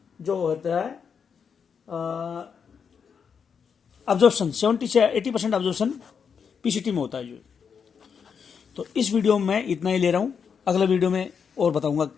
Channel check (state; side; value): quieter; right; 6.6 dB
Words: जो होता है अब्जॉर्प्शन 70 से 80% अब्जॉर्प्शन पीसीटी में होता है जो। तो इस वीडियो में मैं इतना ही ले रहा हूँ, अगले वीडियो में और बताऊंगा